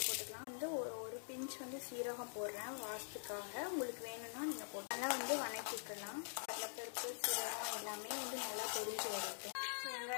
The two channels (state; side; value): silent; right; digital silence